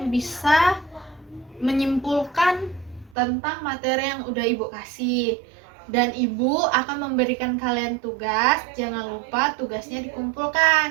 bisa menyimpulkan tentang materi yang udah Ibu kasih. Dan Ibu akan memberikan kalian tugas. Jangan lupa tugasnya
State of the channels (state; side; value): drops out; left; at 3.2 s